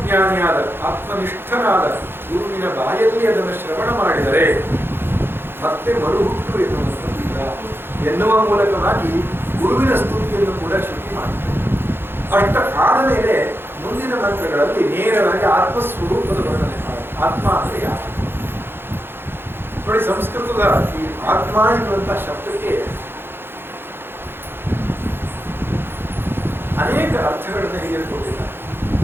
ಆತ್ಮನಿಷ್ಠನಾದ ಗುರುವಿನ ಬಾಯಲ್ಲಿ ಅದನ್ನು ಶ್ರವಣ ಮಾಡಿದರೆ ಮತ್ತೆ ಮರುಹುಟ್ಟು ಎನ್ನುವಂಥದ್ದಿಲ್ಲ ಎನ್ನುವ ಮೂಲಕವಾಗಿ ಗುರುವಿನ ಸ್ತುತಿಯನ್ನು ಕೂಡ ಶ್ರುತಿ ಮಾಡ್ತಾರೆ. ಅಷ್ಟ ಆದ ಮೇಲೆ ಮುಂದಿನ ಮಂತ್ರಗಳಲ್ಲಿ ನೇರವಾಗಿ ಆತ್ಮಸ್ವರೂಪದ ವರ್ಣನೆ ಮಾಡಿ. ಆತ್ಮ ಅಂದರೆ ಯಾರು ನೋಡಿ, ಸಂಸ್ಕೃತದ ಈ ಆತ್ಮ ಎನ್ನುವಂತಹ ಶಬ್ದಕ್ಕೆ ಅನೇಕ ಅರ್ಥಗಳನ್ನು ಹೇಳಿಕೊಟ್ಟಿದ್ದಾರೆ.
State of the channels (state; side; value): late; left; 0.10 ms